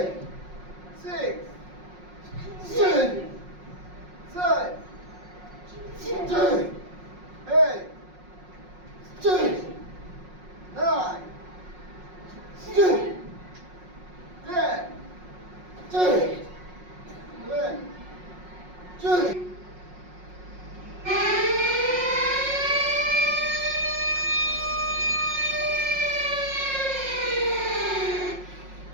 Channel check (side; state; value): left; late; 5.5 ms